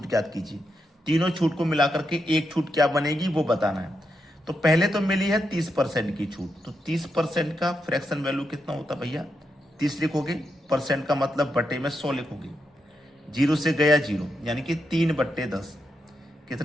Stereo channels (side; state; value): both; normal; correlation 0.84